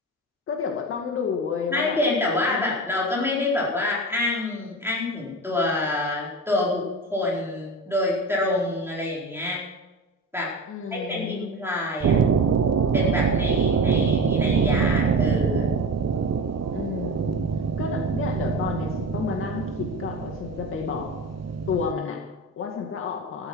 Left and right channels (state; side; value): normal; both; correlation 0.28